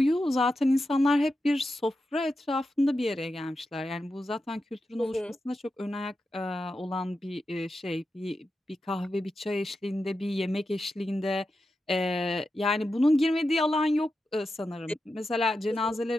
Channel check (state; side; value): normal; both; correlation 0.89